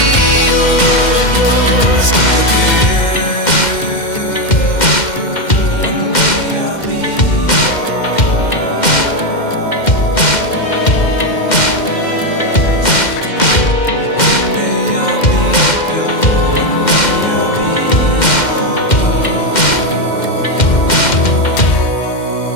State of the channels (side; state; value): right; late; 2.1 ms